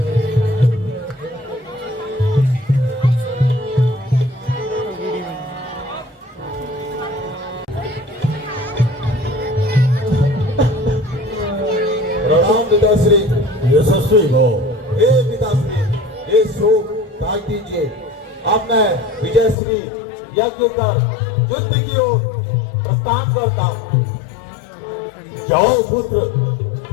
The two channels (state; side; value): drops out; right; at 19.6 s